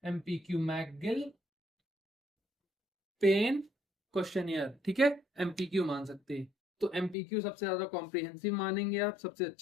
एमपीक्यू, मैकगिल पेन क्वेश्चनियर। ठीक है, एमपीक्यू मान सकते हैं। तो एमपीक्यू सबसे ज्यादा कॉम्प्रिहेंसिव मानेंगे आप, सबसे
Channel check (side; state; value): right; drops out; at 7.2 s